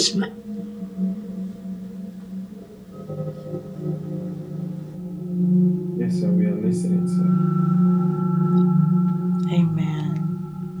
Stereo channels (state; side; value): identical; both; correlation 1.00